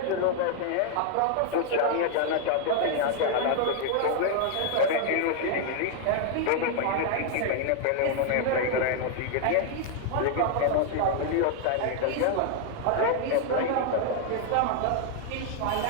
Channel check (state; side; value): different; both; correlation 0.00